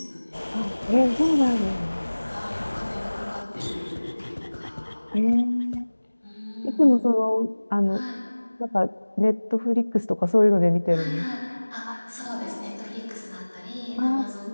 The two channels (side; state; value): both; inverted; correlation -1.00